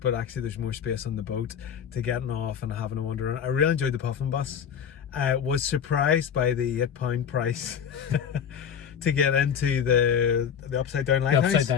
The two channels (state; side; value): quieter; right; 7.9 dB